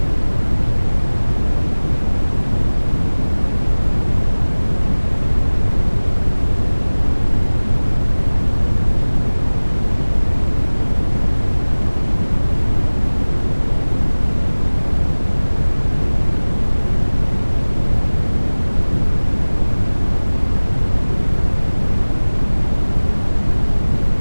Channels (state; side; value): inverted; both; correlation -1.00